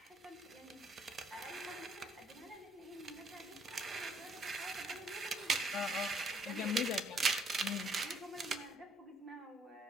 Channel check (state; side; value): normal; both; correlation 0.67